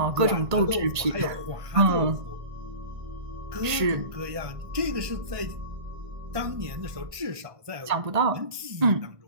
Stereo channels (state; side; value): late; left; 1.5 ms